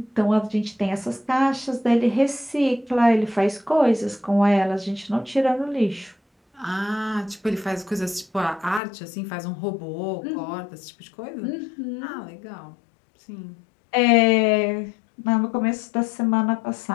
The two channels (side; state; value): right; drops out; at 8.8 s